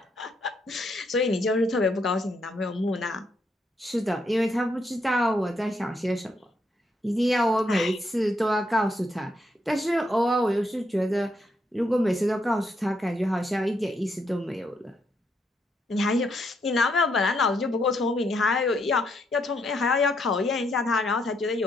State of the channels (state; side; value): normal; both; correlation 0.76